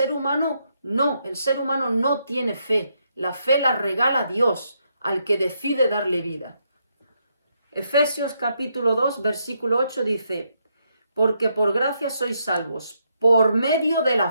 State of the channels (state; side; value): inverted; both; correlation -0.78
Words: humano? No, el ser humano no tiene fe. La fe la regala Dios al que decide darle vida. Efesios capítulo 2, versículo 8 dice, porque por gracia sois salvos, por medio de la